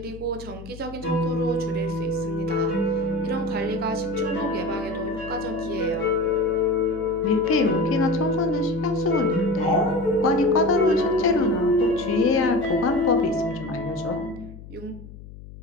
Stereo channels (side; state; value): left; noise; hum, 16 dB below the sound